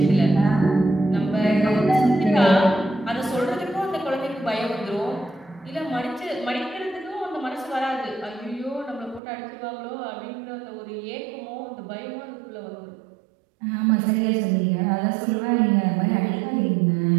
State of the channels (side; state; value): left; drops out; at 9.2 s